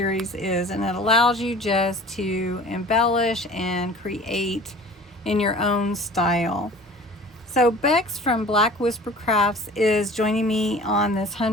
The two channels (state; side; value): normal; both; correlation 0.44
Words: is, and it allows you just to embellish and create in your own style. So Bexx from Black Whisper Crafts is joining me on this